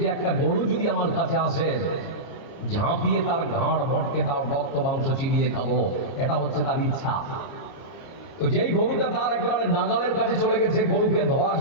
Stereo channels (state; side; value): late; right; 30 ms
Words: একটা গরু যদি আমার কাছে আসে, ঝাঁপিয়ে তার ঘাড় ভটকে তার রক্ত মাংস চিবিয়ে খাবো, এটা হচ্ছে তার ইচ্ছা। তো যেই গরুটা তার একেবারে নাগালের কাছে চলে গেছে গরুকে ধরার